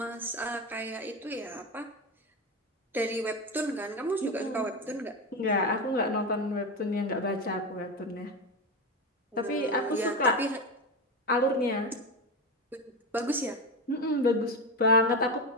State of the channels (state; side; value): normal; both; correlation 0.18